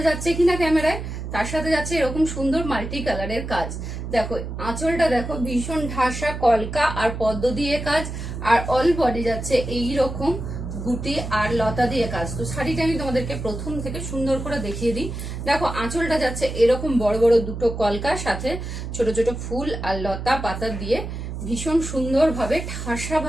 যাচ্ছে কিনা ক্যামেরায়। তার সাথে যাচ্ছে এরকম সুন্দর মাল্টি কালারের কাজ। দেখো আঁচলটা দেখো ভীষণ ঢাসা কলকা আর পদ্ম দিয়ে কাজ, আর অল বডি যাচ্ছে এইরকম গুটি আর লতা দিয়ে কাজ। তো শাড়িটা আমি তোমাদেরকে প্রথম থেকে সুন্দর করে দেখিয়ে দিই। দেখো আঁচলটা যাচ্ছে এরকম বড় বড় দুটো কলকার সাথে ছোট ছোট ফুল আর লতা পাতা দিয়ে ভীষণ সুন্দর ভাবে ঠাসা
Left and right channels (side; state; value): right; noise; hum, 7 dB below the sound